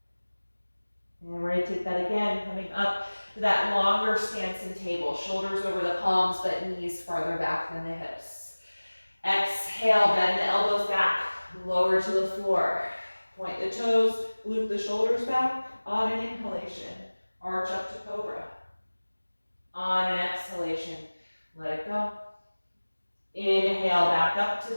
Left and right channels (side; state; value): both; inverted; correlation -1.00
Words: And we're going to take that again, coming up to that longer stance in table. Shoulders over the palms, but knees farther back than the hips. Exhale, bend the elbows back, lower to the floor. Point the toes, loop the shoulders back. On an inhalation, arch up to Cobra. On an exhalation, let it go. Inhale, back up to